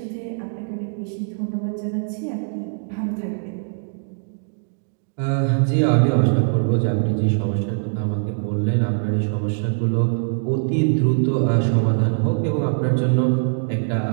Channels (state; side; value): silent; left; digital silence